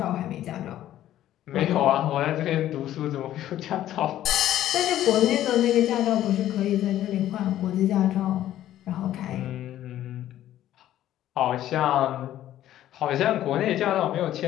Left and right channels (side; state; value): right; quieter; 12.7 dB